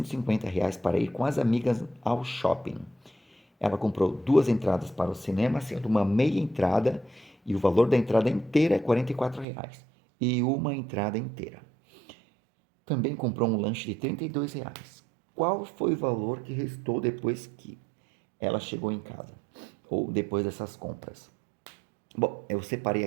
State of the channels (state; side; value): drops out; left; at 9.5 s